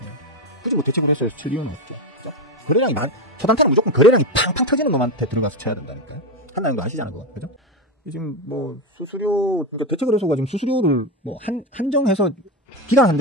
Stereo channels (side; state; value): both; normal; correlation 0.14